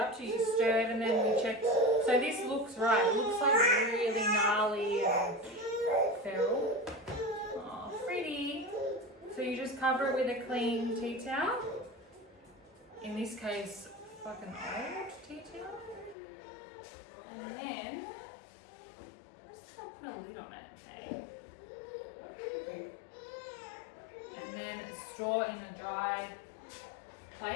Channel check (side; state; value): right; drops out; at 16.2 s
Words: to? You stirred and then we checked. So this looks right. It looks like really gnarly and feral. Oh, pretty. So you just cover it with a clean tea towel. In this case, fucking old tea towel. And then, I'm just gonna put a lid on it, hey? And then store in a dry